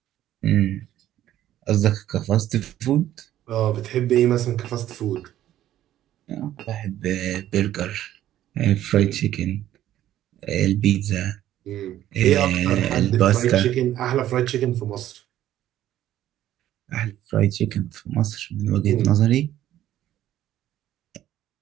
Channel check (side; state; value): left; quieter; 12.7 dB